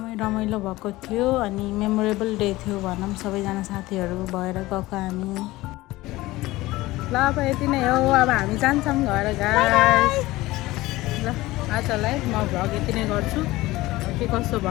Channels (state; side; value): quieter; right; 18.7 dB